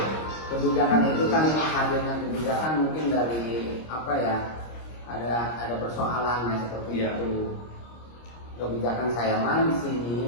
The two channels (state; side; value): late; right; 26 ms